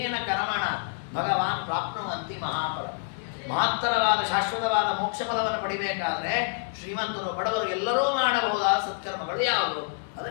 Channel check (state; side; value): silent; right; digital silence